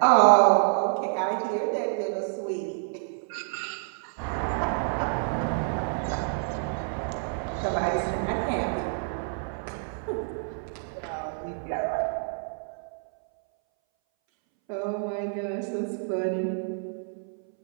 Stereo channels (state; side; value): silent; left; 59 dB below the other